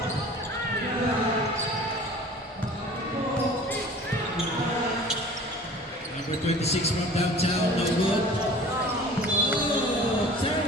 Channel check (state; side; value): normal; both; correlation 0.44